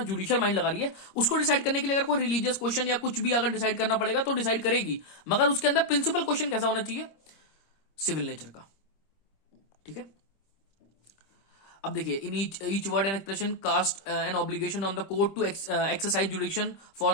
जुडिशियल माइंड लगा रही है, उसको डिसाइड करने के लिए अगर कोई रिलीजियस क्वेश्चन या कुछ भी अगर डिसाइड करना पड़ेगा तो डिसाइड करेगी, मगर उसके अंदर प्रिंसिपल क्वेश्चन कैसा होना चाहिए? सिविल नेचर का, ठीक है। अब देखिए, in each word and expression cast an obligation on the court to exercise jurisdiction for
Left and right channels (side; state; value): right; late; 26 ms